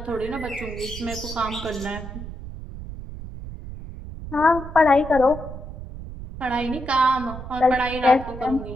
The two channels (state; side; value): noise; right; rumble, 11 dB below the sound